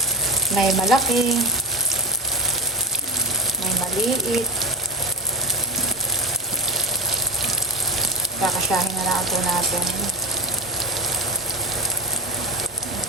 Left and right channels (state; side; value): normal; both; correlation 0.20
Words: May malaki, may maliit. Kakasyahin na lang po natin.